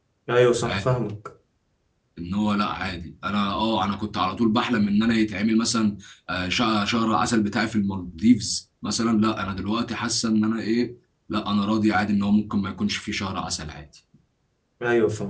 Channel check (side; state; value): both; identical; correlation 1.00